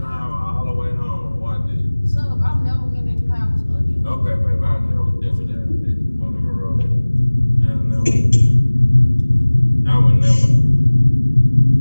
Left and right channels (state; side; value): inverted; both; correlation -1.00